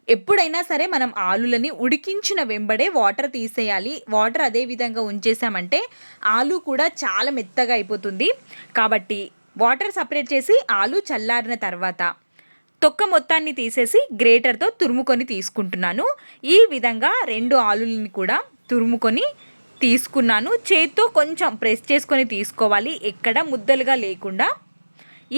ఎప్పుడైనా సరే మనం ఆలులని ఉడికించిన వెంబడే వాటర్ తీసేయాలి. వాటర్ అదే విధంగా ఉంచేసామంటే ఆలు కూడా చాలా మెత్తగా అయిపోతుంది. కాబట్టి వాటర్ సపరేట్ చేసి ఆలు చల్లారిన తర్వాత తొక్క మొత్తాన్ని తీసేసి గ్రేటర్తో తురుముకొని తీసుకుంటున్నాను. ఈ విధంగా 2 ఆలులని కూడా తురుముకొని తీసుకున్నాను. చేత్తో కొంచెం ప్రెస్ చేసుకొని తీసుకోవాలి, ఎక్కడ ముద్దలుగా లేకుండా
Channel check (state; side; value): inverted; both; correlation -1.00